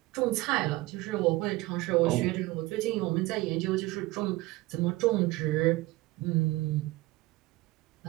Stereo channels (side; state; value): left; quieter; 19.8 dB